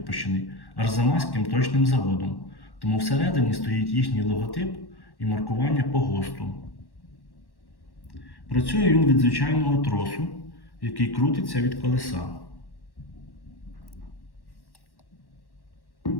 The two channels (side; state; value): right; late; 1.1 ms